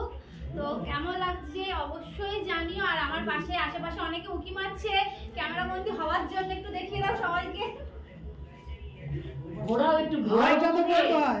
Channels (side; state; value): both; identical; correlation 1.00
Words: তো কেমন লাগছে অবশ্যই জানিও। আর আমার পাশে আশেপাশে অনেকে উকি মারছে ক্যামেরা বন্দি হওয়ার জন্য, একটু দেখিয়ে দাও সবাইকে।